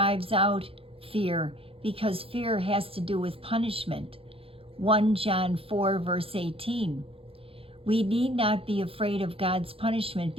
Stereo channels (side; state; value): left; late; 0.27 ms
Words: out fear, because fear has to do with punishment. 1 John 4, verse 18. We need not be afraid of God's punishment